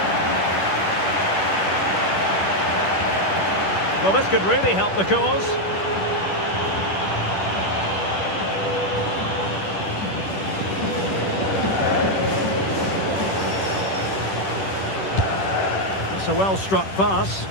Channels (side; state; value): right; late; 10 ms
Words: Well, this could really help the cause. It's a well-struck pass.